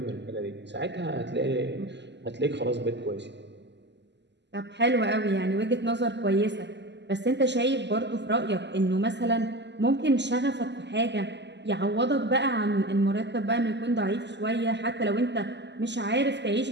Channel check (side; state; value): left; late; 0.51 ms